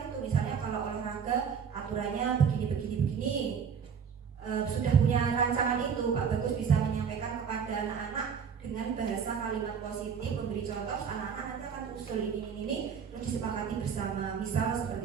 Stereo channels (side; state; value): left; quieter; 6.8 dB